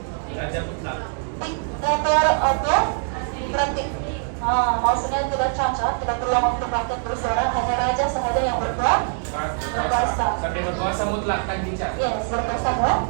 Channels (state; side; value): silent; left; 63 dB below the other